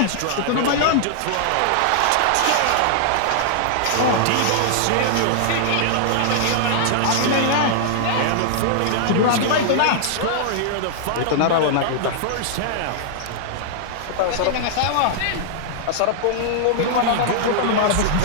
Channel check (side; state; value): both; different; correlation -0.01